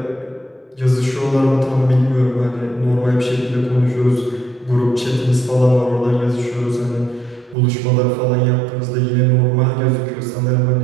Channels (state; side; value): drops out; left; at 7.6 s